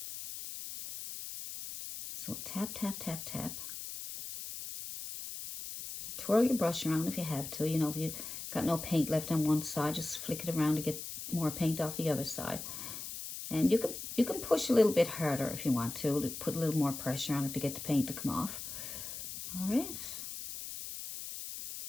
So tap, tap, tap, tap. Twirl your brush around if you have to. You know, if you got no paint left on one side, just flick it around to get more paint off the other side. And you can push a little bit harder if you want to put a little more pressure on it to get the paint to come off. All right.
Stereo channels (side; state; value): left; noise; hiss, 8 dB below the sound